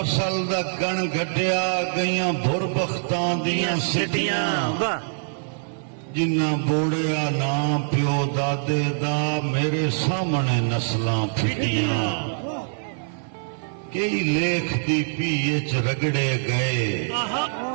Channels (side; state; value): left; silent; 61 dB below the other